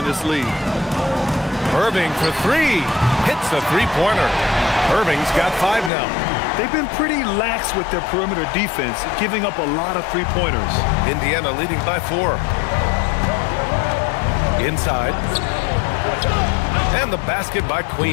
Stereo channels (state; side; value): drops out; right; at 5.9 s